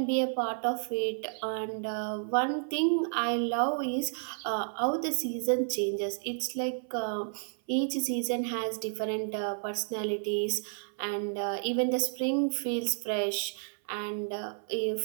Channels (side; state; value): left; silent; 57 dB below the other